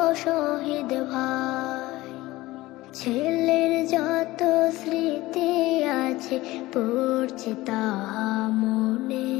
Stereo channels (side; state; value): right; quieter; 18.6 dB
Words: শহীদ ভাই, ছেলের যত স্মৃতি আছে পড়ছে তাহা মনে,